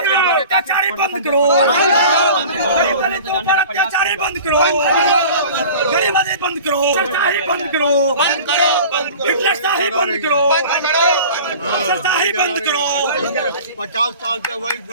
अत्याचारी बंद करो, अत्याचारी बंद करो, गरीबी बंद करो, सरशाही बंद करो, हिटलरशाही बंद करो, सरशाही बंद करो। 50 साल से वही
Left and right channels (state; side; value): inverted; both; correlation -0.41